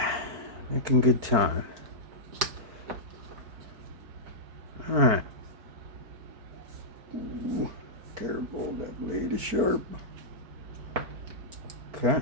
Making good time. Alright. Careful, that blade is sharp. Okay.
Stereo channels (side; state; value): left; late; 4.5 ms